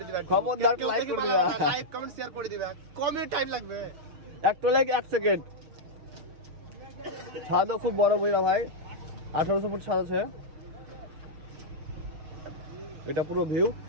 দিবে, খবরদার লাইক করে দিবে, লাইক কমেন্ট শেয়ার করে দিবে। কমই টাইম লাগবে, একটা লাইক 1 সেকেন্ড। ছাদও খুব বড় বইরা ভাই, 1800 ফুট ছাদ আছে। এটা পুরো ভিউ।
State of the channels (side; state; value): left; late; 6.5 ms